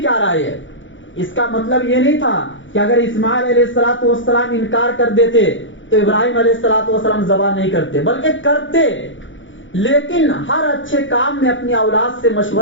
رائے ہے؟ اس کا مطلب یہ نہیں تھا کہ اگر اسماعیل علیہ السلام انکار کر دیتے تو ابراہیم علیہ السلام ذبح نہیں کرتے، بلکہ کرتے، لیکن ہر اچھے کام میں اپنی اولاد سے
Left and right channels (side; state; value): right; late; 0.56 ms